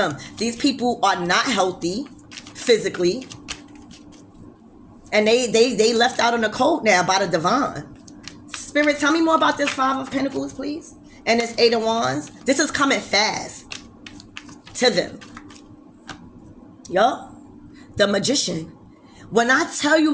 These people are not healthy physically. And they left out on the cold now by the divine. Spirit, tell me more about this Five of Pentacles, please. And this Eight of Wands. This is coming fast to them. Yup. The Magician. When I tell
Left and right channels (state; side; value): identical; both; correlation 1.00